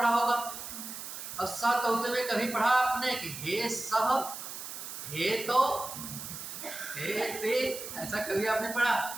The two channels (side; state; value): right; noise; hiss, 9 dB below the sound